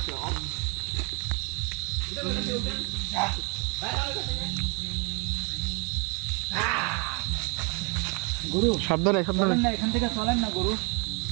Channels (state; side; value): quieter; left; 32.8 dB